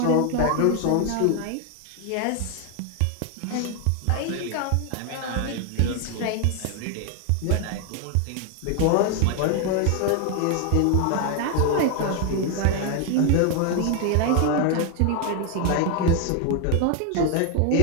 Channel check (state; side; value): different; both; correlation 0.00